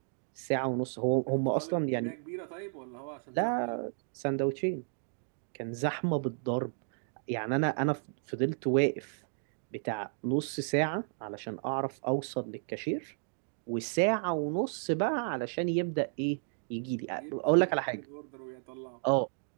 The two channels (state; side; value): silent; left; digital silence